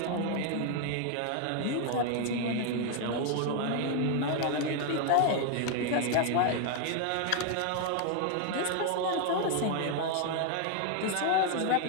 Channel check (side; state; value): both; different; correlation 0.01